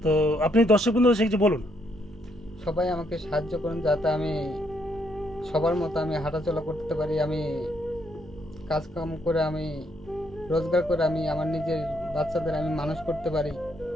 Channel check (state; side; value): normal; both; correlation 0.73